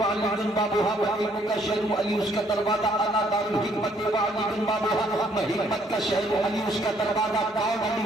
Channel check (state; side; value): normal; both; correlation 0.66